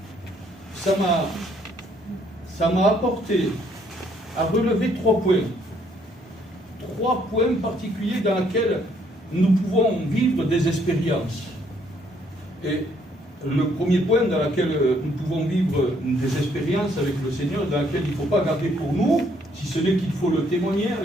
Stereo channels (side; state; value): both; normal; correlation 0.67